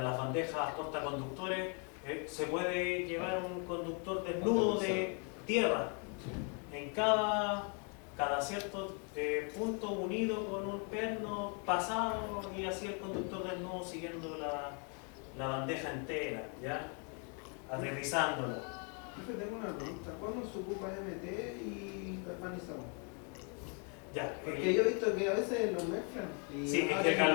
las bandejas portaconductores se puede llevar un conductor desnudo de tierra en cada cierto punto unido con un perno pasado y así el conductor desnudo siguiendo la bandeja entera, ¿ya? Aterrizándola. Profe, tengo una pregunta. ¿Cuándo se ocupa MT y galvanizado? Ya, Porque yo he visto que a veces lo mezclan. Y sí, es que el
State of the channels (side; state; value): right; quieter; 38.2 dB